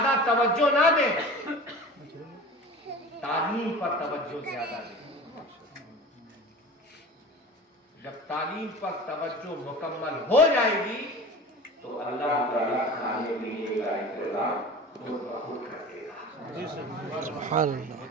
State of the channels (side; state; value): both; normal; correlation 0.36